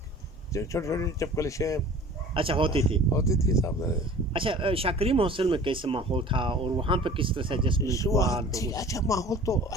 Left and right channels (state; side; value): normal; both; correlation 0.44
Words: چھوٹی چھوٹی چپکلشیں اچھا ہوتی تھی صاحب. اچھا شاہ کریم ہاسٹل میں کیسا ماحول تھا اور وہاں پہ کس طرح سے ایڈجسٹمنٹ ہوا؟ اچھا ماحول تو